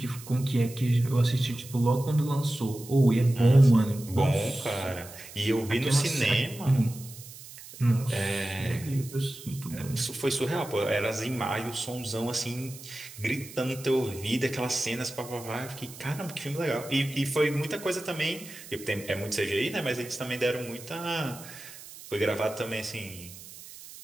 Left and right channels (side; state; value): right; noise; hiss, 16 dB below the sound